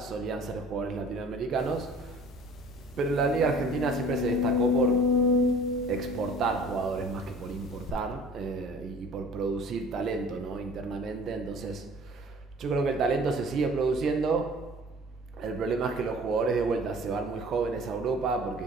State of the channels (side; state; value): both; normal; correlation 0.48